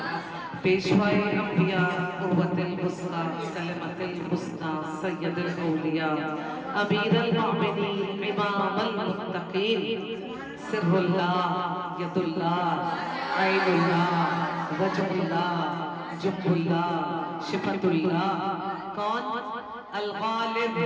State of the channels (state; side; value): identical; both; correlation 1.00